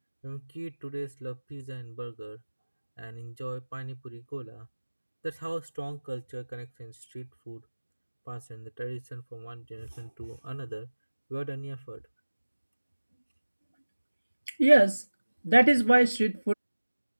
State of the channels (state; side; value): inverted; both; correlation -1.00